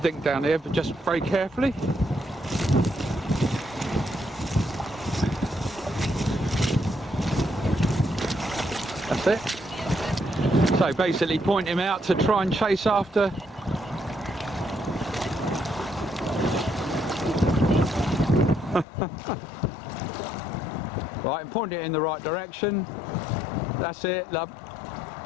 think down here, but just very carefully. That's it. So basically point him out to try and chase after. Right, and point it in the right direction. That's it, love.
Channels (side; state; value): right; drops out; at 18.9 s